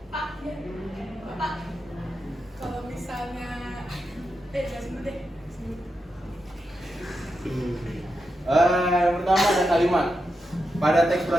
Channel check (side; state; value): both; normal; correlation 0.87